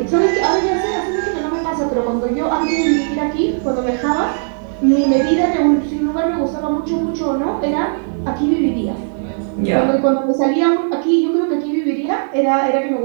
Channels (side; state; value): left; silent; 68 dB below the other